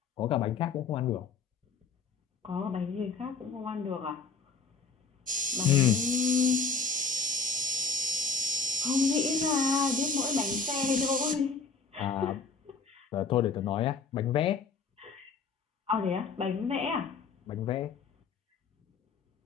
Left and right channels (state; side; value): quieter; right; 4.6 dB